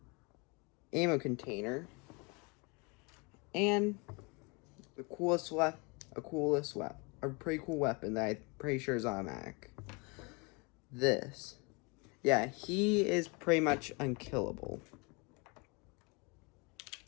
ammo container and a pretty cool weapon that I'm pretty sure is automatic. This. Yeah, he is pretty much unkillable.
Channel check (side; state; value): right; quieter; 29.8 dB